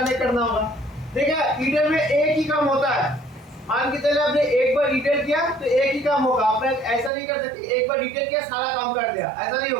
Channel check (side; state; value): left; drops out; at 7.1 s